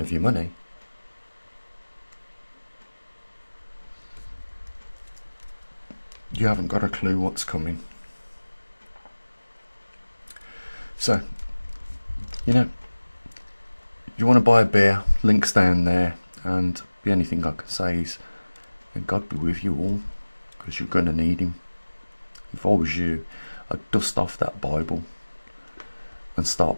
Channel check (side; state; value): both; inverted; correlation -1.00